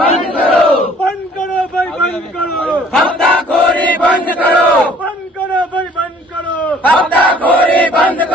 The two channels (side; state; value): both; normal; correlation 0.56